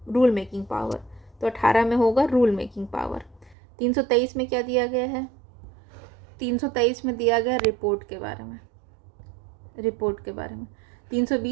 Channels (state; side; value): drops out; left; at 3.6 s